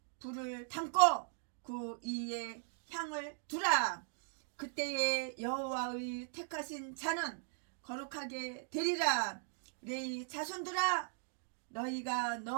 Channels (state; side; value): silent; left; digital silence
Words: 불을 담고 그 위에 향을 두라. 그때에 여호와의 택하신 자는 거룩하게 되리라. 레이 자손들아 너희가